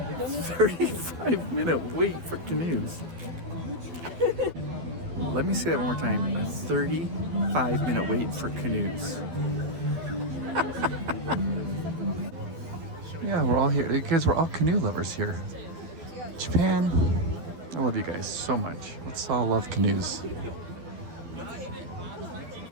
35-minute wait for canoes. Let me say that one more time. A 35-minute wait for canoes. Yeah, we're all here because we're all canoe lovers here. Japan, I love you guys so much. Let's all love canoes.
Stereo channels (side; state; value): left; late; 12 ms